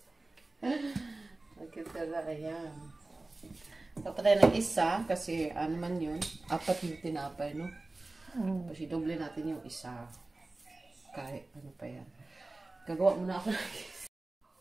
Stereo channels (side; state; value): left; quieter; 3.1 dB